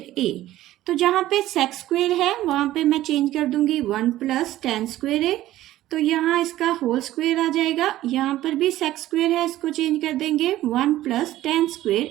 a। तो जहाँ पे सेक स्क्वेयर है वहाँ पे मैं चेंज कर दूंगी 1 प्लस टेन स्क्वेयर a। तो यहाँ इसका होल स्क्वेयर आ जाएगा, यहाँ पर भी सेक स्क्वेयर है इसको चेंज कर देंगे 1 प्लस टेन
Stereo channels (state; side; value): quieter; left; 14.8 dB